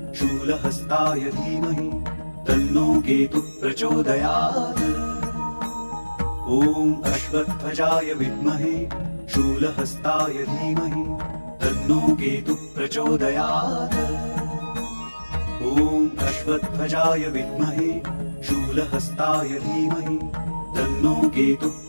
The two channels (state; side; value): inverted; both; correlation -1.00